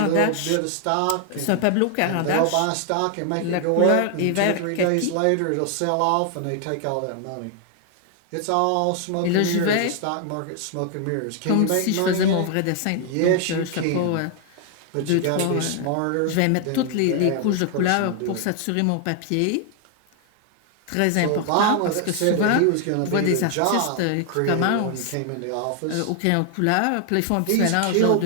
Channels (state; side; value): different; both; correlation 0.00